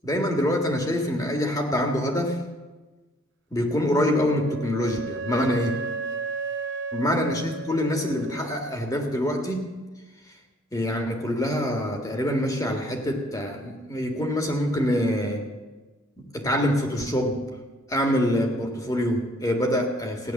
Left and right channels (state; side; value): normal; both; correlation 0.61